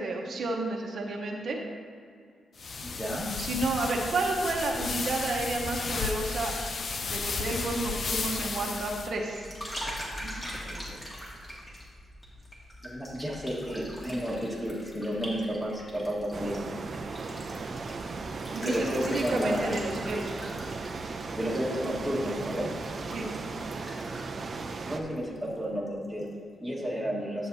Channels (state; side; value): normal; both; correlation 0.83